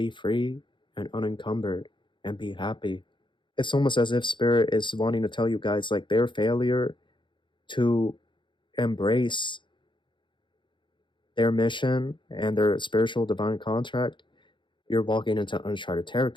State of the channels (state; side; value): late; right; 0.23 ms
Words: free and unencumbered and be happy. It's almost as if Spirit is wanting to tell you guys, like, their failure to embrace their mission and their spiritual divine contract, you're walking into uncharted